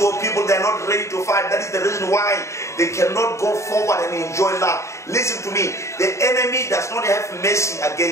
of people, they are not ready to fight. That is the reason why they cannot go forward and enjoy life. Listen to me. The enemy does not have mercy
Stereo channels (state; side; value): late; right; 0.14 ms